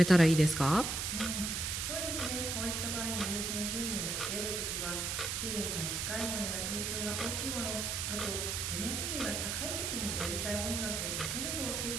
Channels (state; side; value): noise; right; hiss, 1 dB below the sound